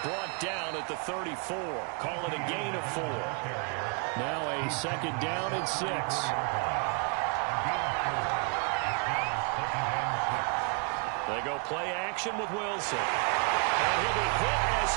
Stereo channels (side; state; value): left; quieter; 37.8 dB